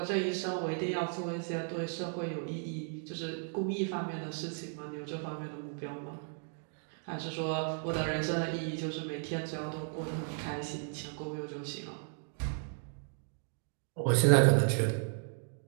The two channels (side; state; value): left; silent; 54 dB below the other